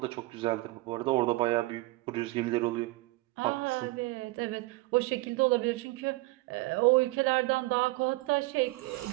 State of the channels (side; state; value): left; quieter; 21.3 dB